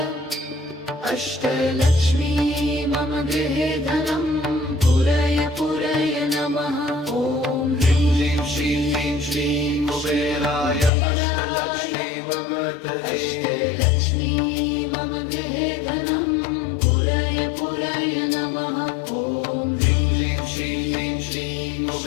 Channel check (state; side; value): drops out; right; at 10.9 s